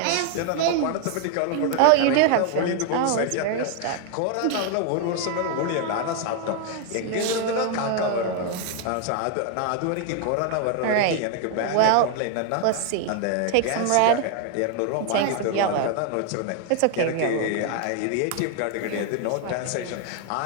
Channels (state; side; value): different; both; correlation 0.00